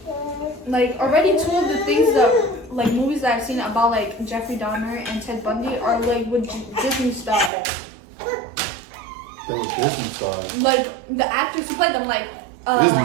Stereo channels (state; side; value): drops out; left; at 7.5 s